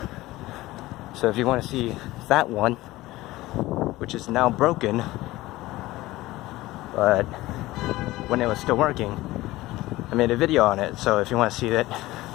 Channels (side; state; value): right; quieter; 18.0 dB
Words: So if you want to see that one, which is now broken, but when it was still working, I made a video on it. So if you want to see it,